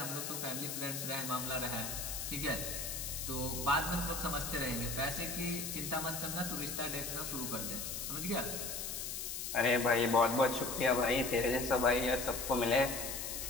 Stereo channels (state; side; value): noise; left; hiss, 4 dB below the sound